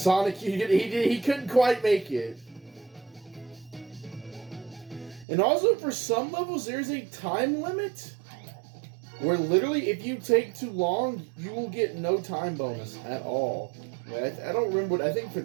he couldn't quite make it. And also, for some levels, there's a time limit where literally, if you take too long, you will get no time bonus at all. I don't remember what, I think for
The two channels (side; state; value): left; drops out; at 5.2 s